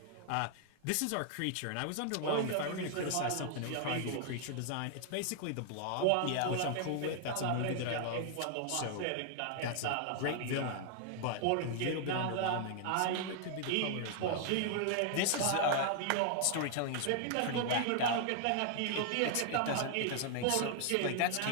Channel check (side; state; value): both; different; correlation 0.00